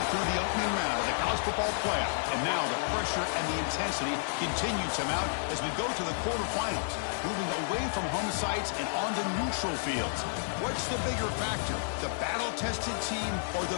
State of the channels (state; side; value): silent; right; digital silence